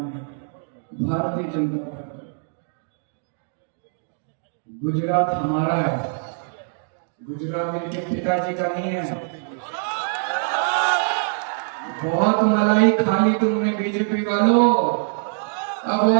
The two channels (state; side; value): silent; left; digital silence